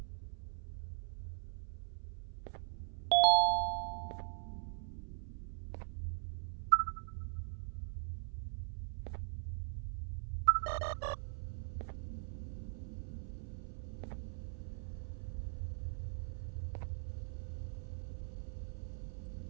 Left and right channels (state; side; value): silent; left; 50 dB below the other